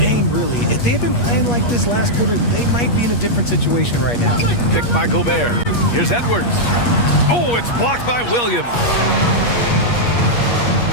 really. If they had been playing like this last quarter, they might be in a different situation right now. Picked by Gobert. Here's Edwards. Oh, it's blocked by Williams.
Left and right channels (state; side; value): late; right; 8.4 ms